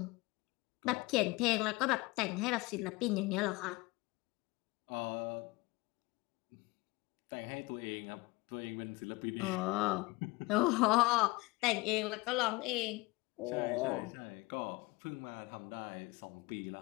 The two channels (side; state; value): right; quieter; 23.3 dB